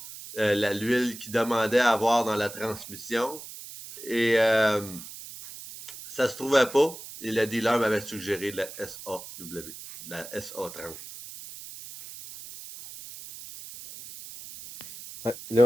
l'huile qu'il demandait à avoir dans la transmission. Et ça se trouvait pas. Et le dealer m'avait suggéré de la SAW, de la SA30. Ouais, là,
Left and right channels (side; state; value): right; noise; hiss, 14 dB below the sound